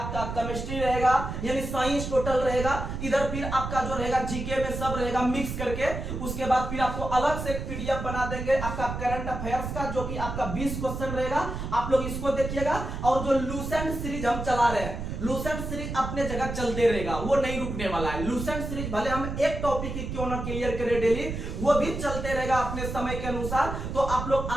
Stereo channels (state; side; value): noise; right; rumble, 5 dB below the sound